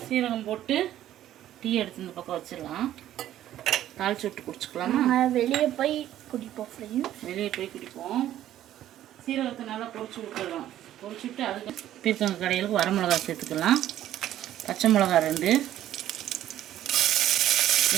சீரகம் போட்டு டீ எடுத்து இந்த பக்கம் வச்சிடலாம். தாளிச்சு விட்டு குடிச்சுக்கலாமா? வெளியே போய் குடிப்போம். வெளியே போய் குடிப்போம். சீரகத்தை நல்லா பொரிச்சு விட்டுடலாம். பொரிச்சு விட்டு அதுக்கு பீர்க்கங்காய் கடையிலுக்கு வரமிளகா சேர்த்துக்கலாம். பச்சை மிளகா 2,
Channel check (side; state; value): left; quieter; 12.5 dB